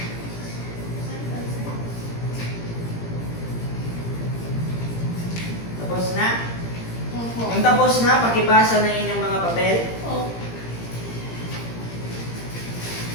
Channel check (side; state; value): right; late; 17 ms